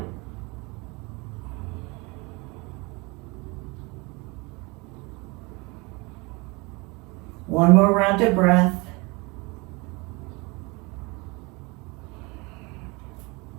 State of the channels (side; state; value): left; quieter; 27.0 dB